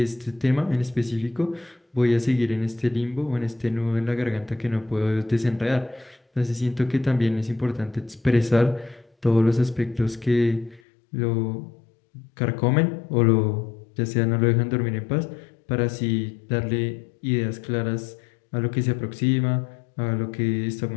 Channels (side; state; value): right; drops out; at 10.8 s